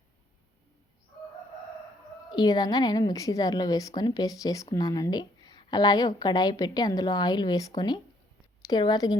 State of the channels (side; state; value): both; normal; correlation 0.67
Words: ఈ విధంగా నేను మిక్సీ జార్లో వేసుకొని పేస్ట్ చేసుకున్నానండి. అలాగే ఒక కడాయి పెట్టి అందులో ఆయిల్ వేసుకొని తిరువాత